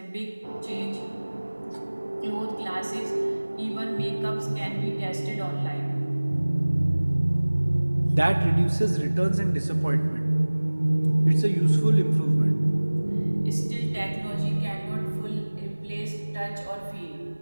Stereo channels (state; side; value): inverted; both; correlation -1.00